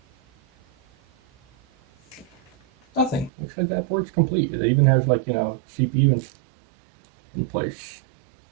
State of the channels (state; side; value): drops out; left; at 3.3 s